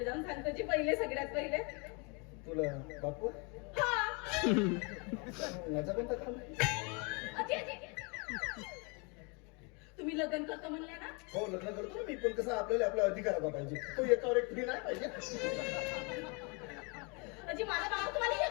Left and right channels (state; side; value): quieter; right; 32.3 dB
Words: जाऊन सांगतो जी पहिले सगळ्यात पहिले. तुला बापू हा माझा कोणता काम आहे? अजी अजी तुम्ही लग्न करतो म्हणले ना. हो लग्न करतो ना मी पण कसं आपल्याला आपला अधिकार पाहिजे तो एकावर एक फ्री नाही पाहिजे. अजी माझा बाबा तुम्हाला